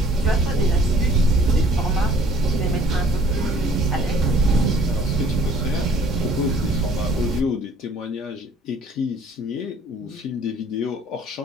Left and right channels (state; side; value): normal; both; correlation 0.55